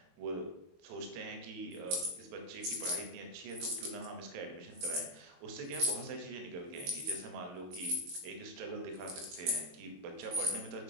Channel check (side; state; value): left; late; 22 ms